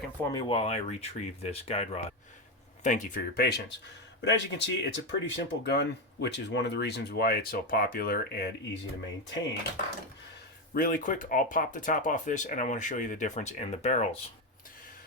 for me while I retrieve this guide rod. Thank you for your patience. But as you can see, it's a pretty simple gun, which is one of the reasons why it's so popular and easy to maintain. Really quick, I'll pop the top off this, and I want to show you the difference in the barrels.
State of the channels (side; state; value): both; normal; correlation 0.11